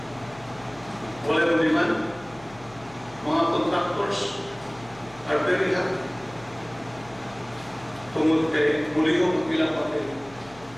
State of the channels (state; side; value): noise; left; hum, 22 dB below the sound